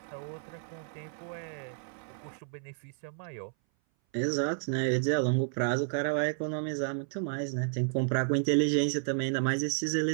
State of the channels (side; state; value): left; silent; 57 dB below the other